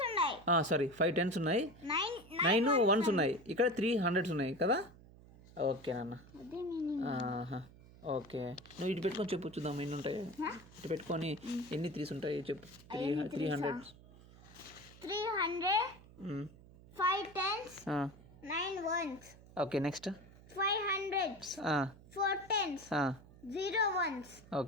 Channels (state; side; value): noise; right; hum, 22 dB below the sound